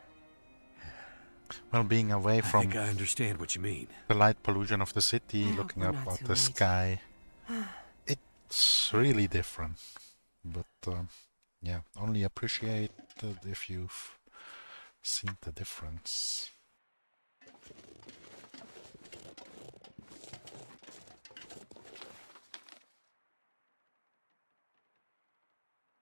Well, being away I from think I understand what you mean. the light pollution of the city, I hope looking we're up not at too the late. sky, it's really different. But yeah, only appreciate it if you've seen the difference.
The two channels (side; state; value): both; inverted; correlation -1.00